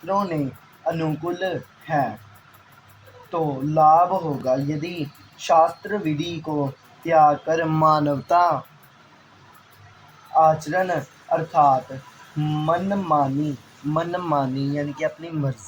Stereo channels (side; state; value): both; identical; correlation 1.00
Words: ने अनुकूल है तो लाभ होगा। यदि शास्त्र विधि को त्याग कर मानवता आचरण अर्थात मनमानी यानी कि अपनी